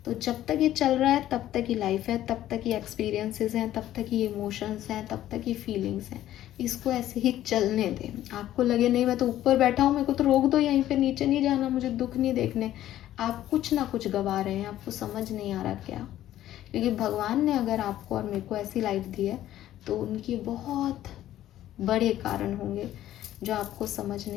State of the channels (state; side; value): quieter; right; 13.1 dB